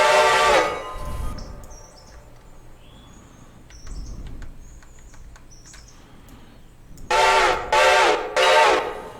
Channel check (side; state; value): both; identical; correlation 1.00